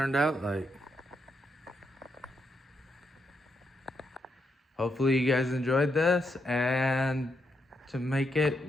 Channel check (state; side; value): normal; both; correlation 0.81